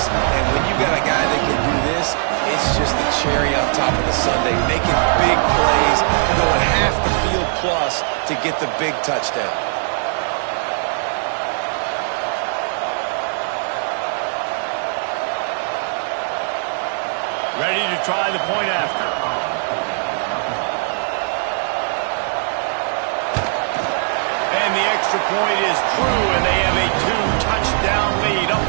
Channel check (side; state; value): left; silent; 61 dB below the other